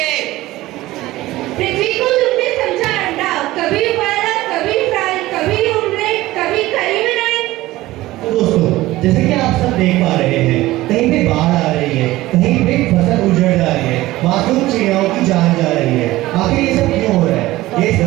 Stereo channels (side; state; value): left; quieter; 17.4 dB